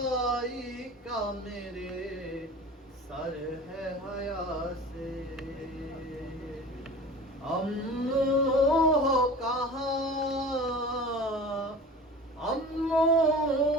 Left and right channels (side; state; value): both; normal; correlation 0.38